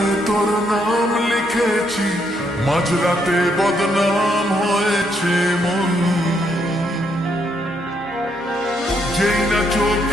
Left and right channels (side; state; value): left; noise; hum, 25 dB below the sound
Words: তোর নাম লিখেছি, মাঝরাতে বদনাম হয়েছে মন। যেই না